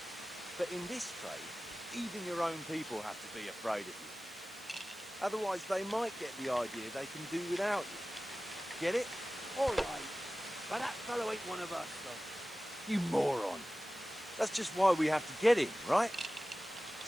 But in this trade, even your own people have to be afraid of you. Otherwise, they might get the idea they can do without you. Get it? All right. But that fellow ain't one of us, though. You moron. That's just why we have to get him, right?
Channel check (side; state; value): right; noise; hiss, 20 dB below the sound